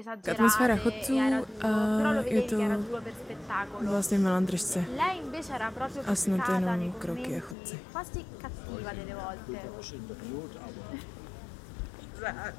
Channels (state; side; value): drops out; right; at 7.6 s